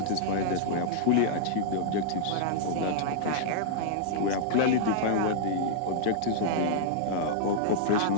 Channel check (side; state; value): both; different; correlation -0.01